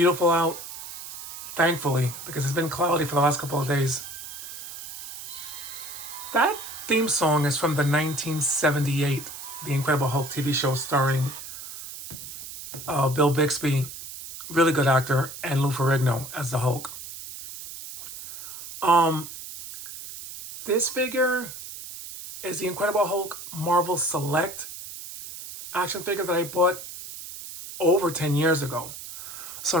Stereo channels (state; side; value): noise; right; hiss, 11 dB below the sound